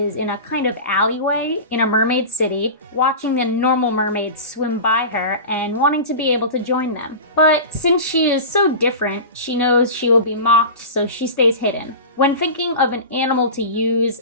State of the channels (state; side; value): inverted; both; correlation -0.30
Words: in a kind of alleyway in a mermaid city, watching the normal mermaids swim by her and wanting to be able to join them. But since she is so different, she knows she will be mocked, so she stays hidden. When thinking of an animal to use,